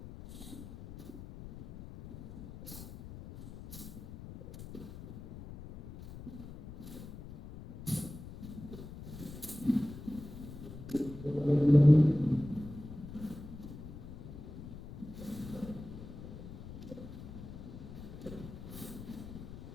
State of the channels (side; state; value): left; noise; rumble, 12 dB below the sound